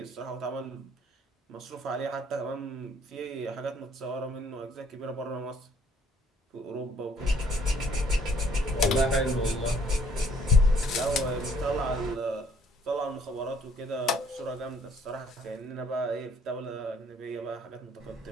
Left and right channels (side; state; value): both; normal; correlation 0.62